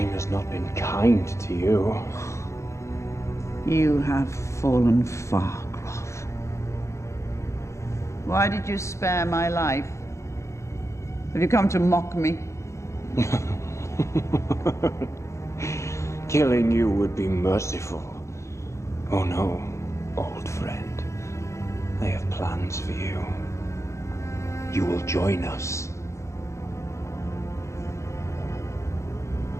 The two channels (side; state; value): right; late; 0.14 ms